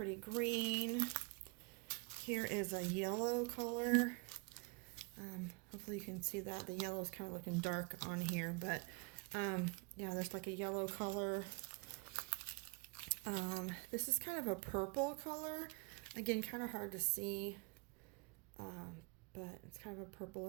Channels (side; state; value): left; quieter; 31.3 dB